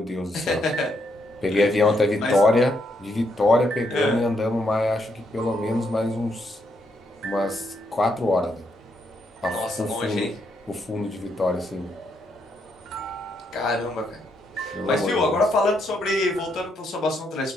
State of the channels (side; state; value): both; normal; correlation 0.77